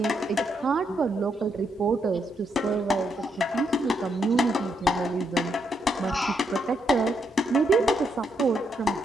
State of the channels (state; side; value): normal; both; correlation 0.78